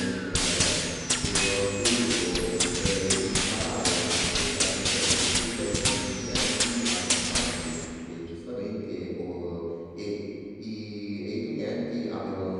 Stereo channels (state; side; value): identical; both; correlation 1.00